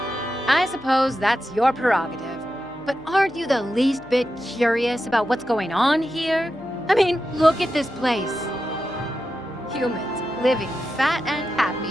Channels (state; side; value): noise; left; hum, 23 dB below the sound